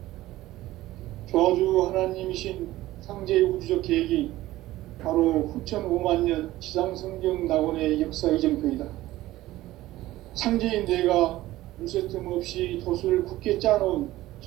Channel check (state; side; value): quieter; left; 16.3 dB